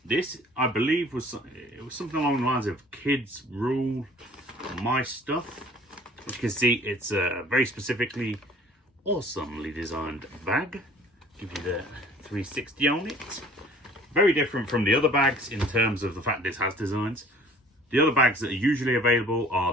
This, I believe, was something along the lines of Kidz Rule My Stuff. As you can see, it's a very specifically awesomely designed bag. Give you the 360 on it. Very different from the other bags in terms of the fact this has designs. The other bags that are usually available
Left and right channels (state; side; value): normal; both; correlation 0.51